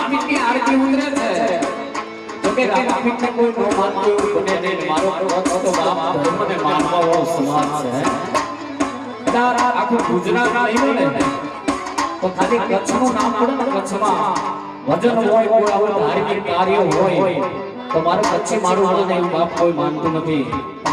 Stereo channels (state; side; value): identical; both; correlation 1.00